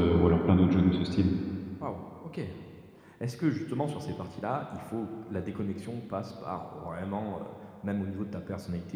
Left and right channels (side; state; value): both; identical; correlation 1.00